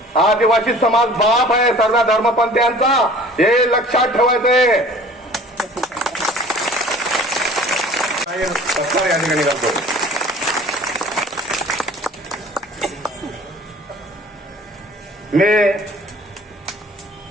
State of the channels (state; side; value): normal; both; correlation 0.47